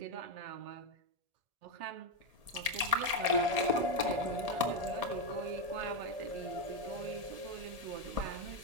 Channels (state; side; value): late; left; 1.8 ms